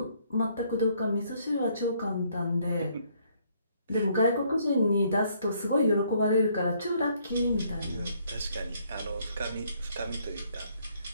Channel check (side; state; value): both; inverted; correlation -0.67